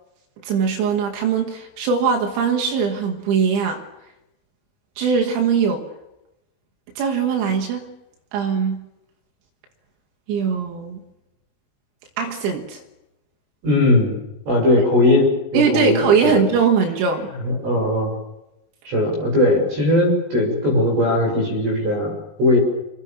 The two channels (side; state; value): left; late; 20 ms